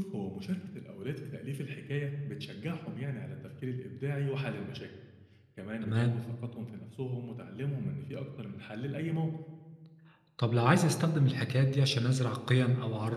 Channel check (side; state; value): both; identical; correlation 1.00